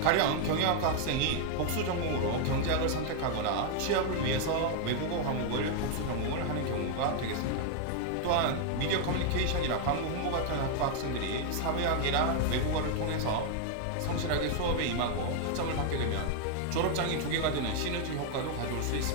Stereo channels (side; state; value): both; different; correlation 0.00